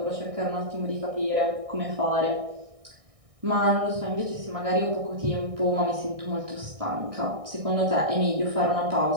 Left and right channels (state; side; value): late; left; 1.6 ms